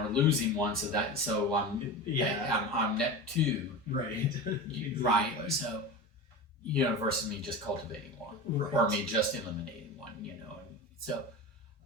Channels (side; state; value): both; normal; correlation 0.27